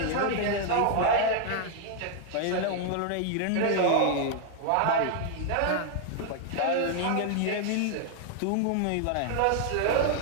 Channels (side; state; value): both; different; correlation 0.00